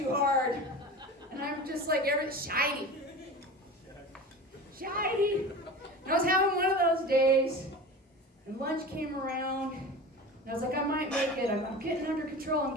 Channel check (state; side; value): normal; both; correlation 0.33